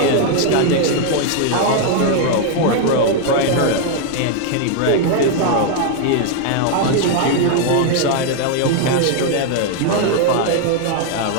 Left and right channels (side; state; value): both; different; correlation 0.00